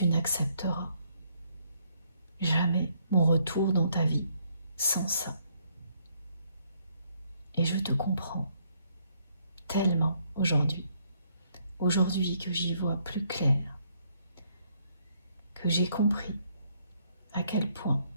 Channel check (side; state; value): both; inverted; correlation -0.70